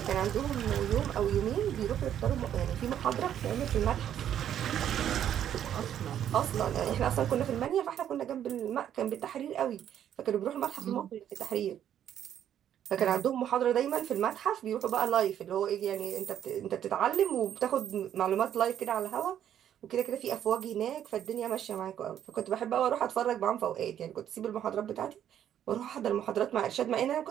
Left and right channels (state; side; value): quieter; left; 10.2 dB